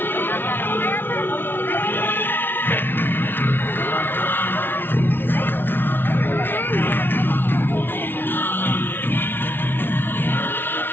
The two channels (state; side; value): late; right; 0.10 ms